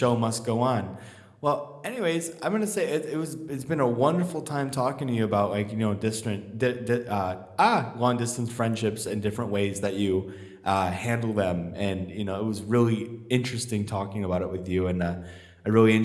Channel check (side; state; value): both; identical; correlation 1.00